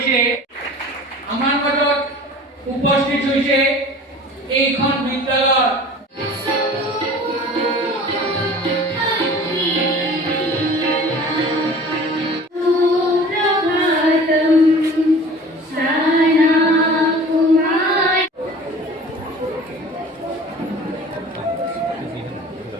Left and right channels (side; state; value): both; normal; correlation 0.43